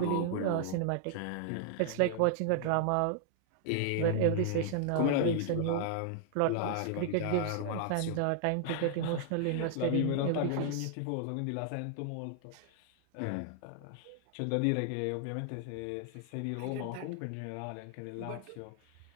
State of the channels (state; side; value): different; both; correlation 0.00